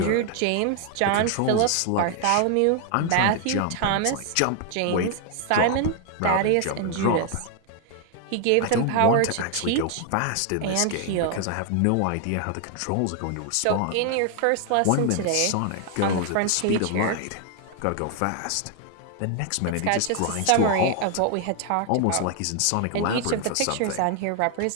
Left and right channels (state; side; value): different; both; correlation 0.00